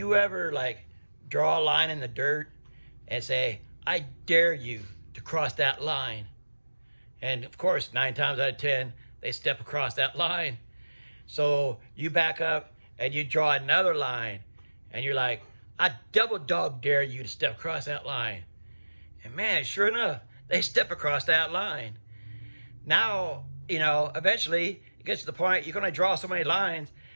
ever like draw a line in the dirt and say, I dare you to cross that line? And of course, 9 times out of 10, they step across that line. So you back up and you draw another line and you're like, I double dog dare you to step across that line. And man, sure enough, they step across that line. Now, eventually it gets to the point you're going to draw so many lines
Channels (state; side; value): inverted; both; correlation -1.00